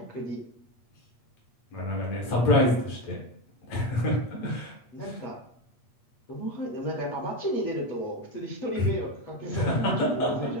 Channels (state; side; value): late; right; 8.5 ms